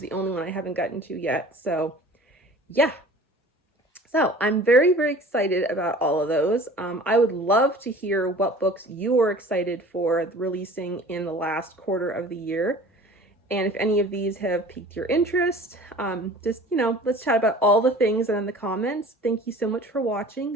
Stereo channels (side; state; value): both; normal; correlation 0.44